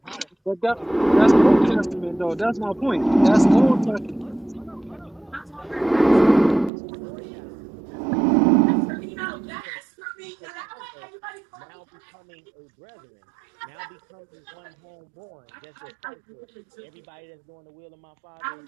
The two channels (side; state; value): left; drops out; at 6.7 s